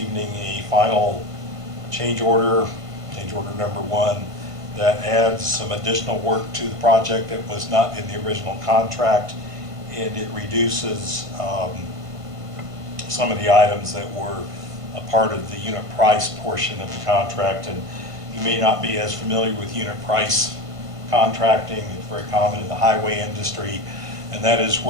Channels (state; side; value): late; left; 1.5 ms